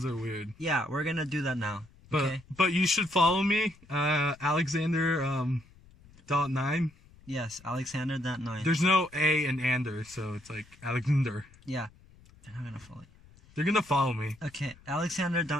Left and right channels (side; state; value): left; noise; rumble, 25 dB below the sound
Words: are weird. Yeah, we're gonna do that now. But Okay? but you should follow me, Alexander .9. Yes, Alexander.9. There's no A in Ander, so it's like Alexander. Yeah, they're not gonna follow you. They're gonna follow me. Okay,